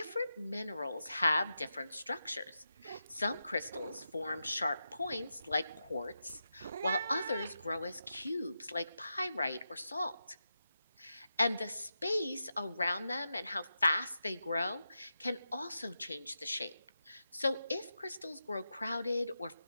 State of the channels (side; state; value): both; inverted; correlation -0.89